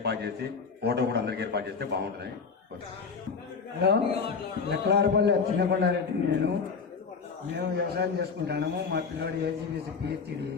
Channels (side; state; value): right; quieter; 5.3 dB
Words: చేసి ఫోటో కూడా అందరికి ఏర్పాటు చేస్తే బాగుంటుంది. హలో, లెక్కలారపల్లి చిన్నకొండారెడ్డి. మేము వ్యవసాయం చేసుకుంటున్నాము. మా పిల్లవాడు ఏజీబీసీ పిహెచ్డి